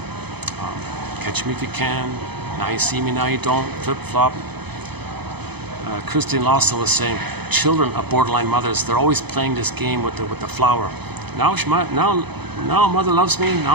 Catch me if you can. Now you see me, now you don't. Flip-flop. Christine Lawson was saying, children of borderline mothers, they're always playing this game with the flower. Now mother loves me,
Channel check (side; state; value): left; late; 0.98 ms